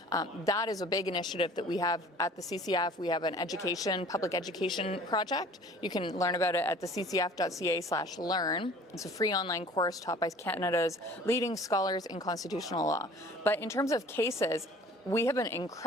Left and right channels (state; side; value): normal; both; correlation 0.48